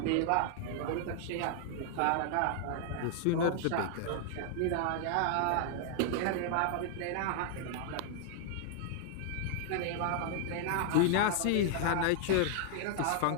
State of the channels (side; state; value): both; different; correlation -0.01